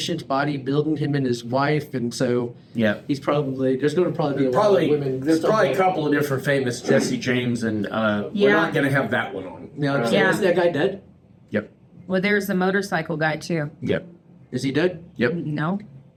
bodybuilding, him and his wife, and so Yeah. there's going to probably be a lot of women. There's stuff probably a like- couple of different famous Jesse James, and we're Yeah. not going to have that one on. Now, Yeah. is that guy dead? Yep. Well, there's the motorcycle guy too. Yep. Is he dead? Yep. No,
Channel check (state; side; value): identical; both; correlation 1.00